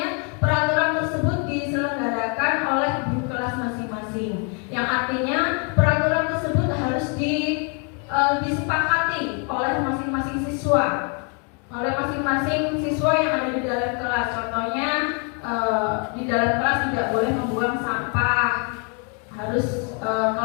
peraturan tersebut diselenggarakan oleh guru kelas masing-masing. Yang artinya peraturan tersebut harus disepakati oleh masing-masing siswa. Oleh masing-masing siswa yang ada di dalam kelas. Contohnya di dalam kelas tidak boleh membuang sampah, harus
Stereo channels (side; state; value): right; quieter; 37.7 dB